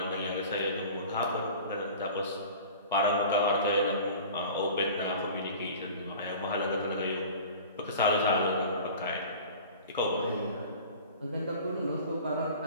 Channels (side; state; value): both; inverted; correlation -0.40